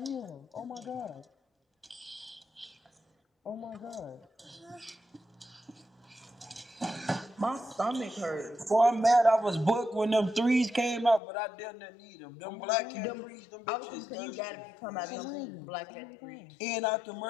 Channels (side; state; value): right; drops out; at 11.2 s